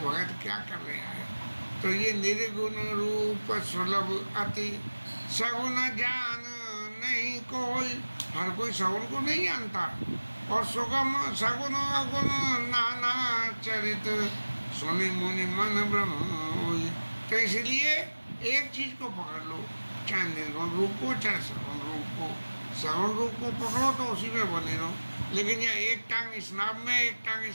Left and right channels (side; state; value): both; inverted; correlation -1.00